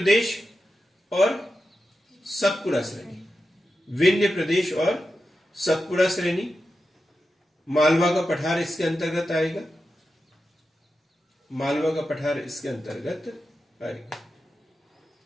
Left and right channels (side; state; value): both; normal; correlation 0.90